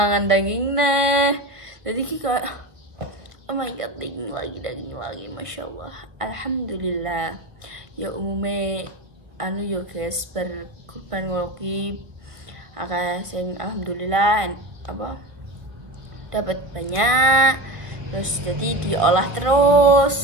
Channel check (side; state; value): left; late; 1.4 ms